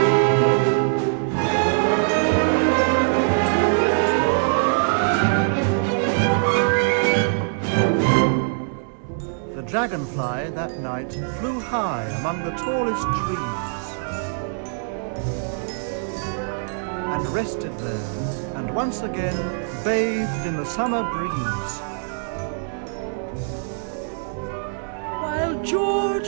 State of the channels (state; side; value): silent; left; digital silence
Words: The dragonfly that night flew high among the tallest trees and rested there, and once again bathed in the summer breeze. While